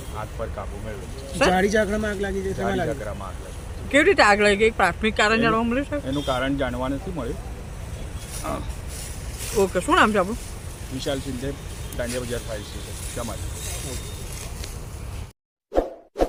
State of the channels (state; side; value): identical; both; correlation 1.00